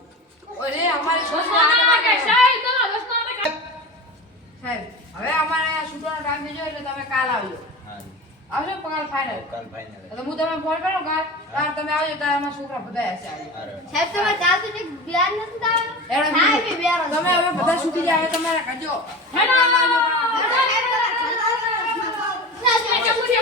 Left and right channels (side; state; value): both; normal; correlation 0.30